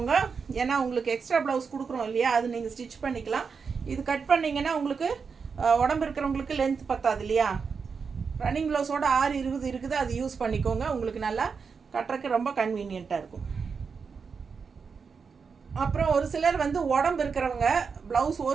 ஏன்னா உங்களுக்கு எக்ஸ்ட்ரா ப்ளவுஸ் கொடுக்குறோம் இல்லையா, அது நீங்கள் ஸ்டிச் பண்ணிக்கலாம். இது கட் பண்ணிங்கன்னா உங்களுக்கு உடம்பு இருக்கிறவங்களுக்கு லென்த் பத்தாது இல்லையா. ரன்னிங் ப்ளவுஸோட 6:20 இருக்குது, அது யூஸ் பண்ணிக்கோங்க. உங்களுக்கு நல்லா கட்டுறதுக்கு ரொம்ப கன்வீனியண்ட்டாக இருக்கும். அப்புறம் ஒரு சிலர் வந்து உடம்பு இருக்கிறவங்க ப்ளவுஸ்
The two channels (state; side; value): quieter; left; 5.6 dB